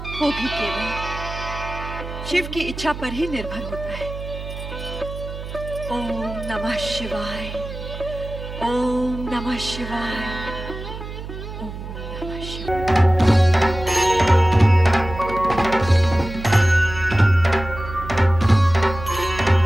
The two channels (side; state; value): right; noise; hum, 10 dB below the sound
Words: वो भी केवल शिव की इच्छा पर ही निर्भर होता है। ओम नमः शिवाय, ओम नमः शिवाय, ओम नमः शिवाय।